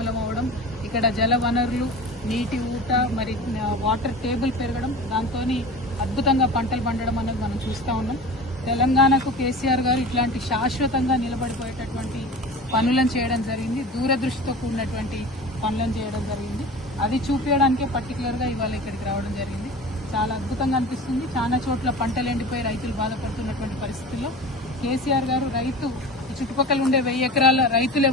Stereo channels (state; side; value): normal; both; correlation 0.35